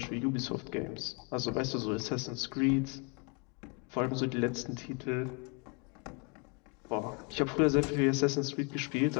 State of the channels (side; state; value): right; quieter; 34.2 dB